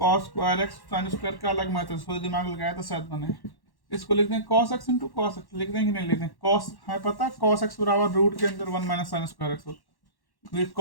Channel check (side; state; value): right; late; 1.1 ms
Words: cos square x sine square का अलग मैथड, थोड़ी दिमाग लगाया तो शायद बने। इसको लिखते हैं cos x into cos x। लिख दें कि नहीं लिख दें? cos है पता, cos x बराबर रूट के अंदर 1 - साइन स्क्वायर एक्स होता है। क्योंकि